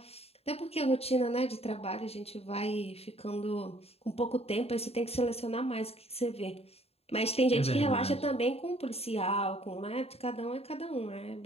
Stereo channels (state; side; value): late; right; 0.29 ms